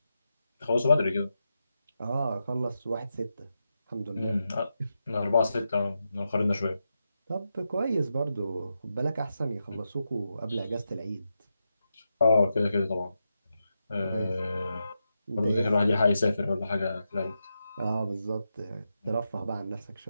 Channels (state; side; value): inverted; both; correlation -0.87